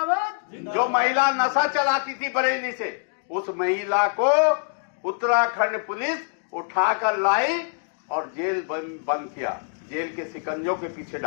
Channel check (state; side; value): silent; right; digital silence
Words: महिला नशा चलाती थी बरेली से, उस महिला को उत्तराखंड पुलिस उठाकर लाई और जेल बंद किया, जेल के शिकंजों के पीछे